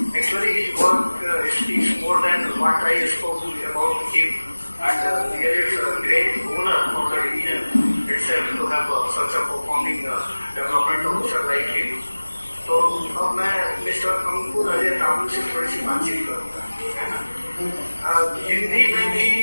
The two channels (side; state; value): both; inverted; correlation -1.00